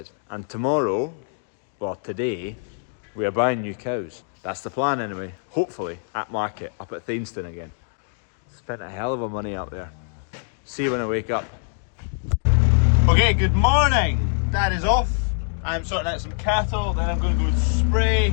And tomorrow, well today, we are buying new cows. That's the plan anyway, hopefully, at market, up at Thainston again. Spent a hell of a money up there. See you when I wake up. Okay, good morning. Dad is off. I'm sorting out some cattle, then I'm going to go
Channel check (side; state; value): right; silent; 63 dB below the other